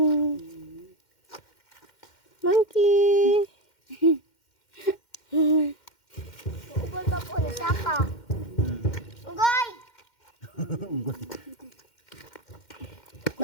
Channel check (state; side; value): late; right; 2.1 ms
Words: Monkey. Ugol ka po na sapa. Ugol!